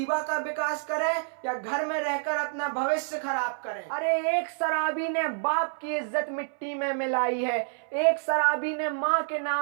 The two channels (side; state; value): left; silent; 59 dB below the other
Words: का विकास करें या घर में रहकर अपना भविष्य खराब करें। अरे एक शराबी ने बाप की इज्जत मिट्टी में मिलाई है, एक शराबी ने माँ के